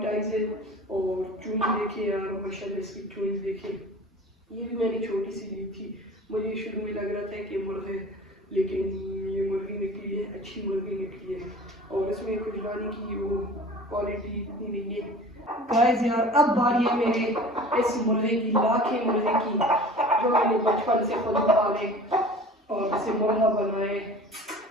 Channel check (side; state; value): both; normal; correlation 0.41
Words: आईज है और चूंज देखिए यार माशाल्लाह, इसकी चूंज देखिए। ये भी मैंने छोटी सी ली थी, मुझे शुरू में लग रहा था कि मुर्गे, लेकिन ये मुर्गी निकली है, अच्छी मुर्गी निकली है और इसमें कुछ लाने की वो क्वालिटी इतनी नहीं है। गाइस यार अब बारी है मेरे इस मुर्गे की, लाखे मुर्गे की, जो मैंने बचपन से खुद पाले और इसे मुर्गा बनाए।